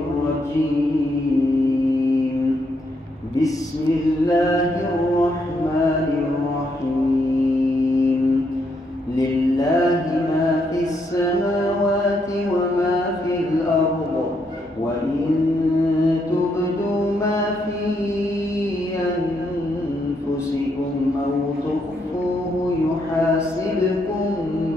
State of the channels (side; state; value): both; normal; correlation 0.76